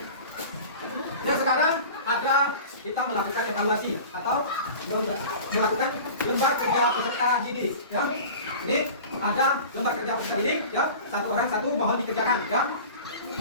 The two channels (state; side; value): inverted; both; correlation -0.38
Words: Nah, sekarang ada kita melakukan evaluasi atau melakukan lembar kerja peserta didik ya. Jadi ada lembar kerja peserta didik ya, satu orang satu mohon dikerjakan ya.